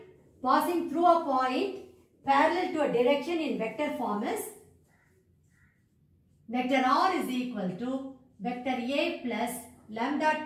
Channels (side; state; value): both; identical; correlation 1.00